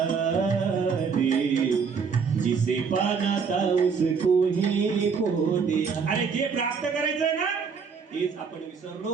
रे, जिसे पाना था उसको ही खो दिया. अरे जे प्राप्त करायचंय ना तेच आपण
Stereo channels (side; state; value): left; quieter; 5.8 dB